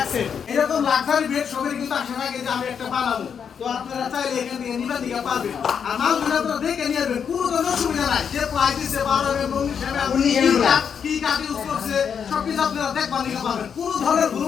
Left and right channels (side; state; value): right; quieter; 7.2 dB